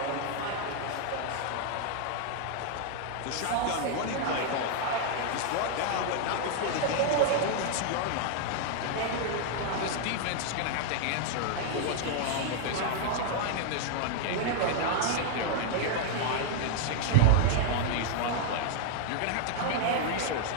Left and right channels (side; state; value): both; different; correlation -0.01